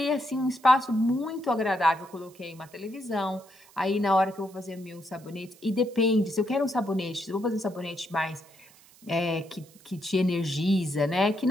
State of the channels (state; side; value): noise; right; hiss, 26 dB below the sound